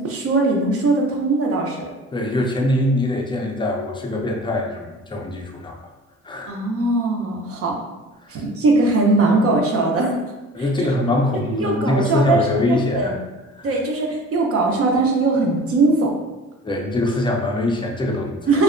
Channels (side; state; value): both; normal; correlation 0.43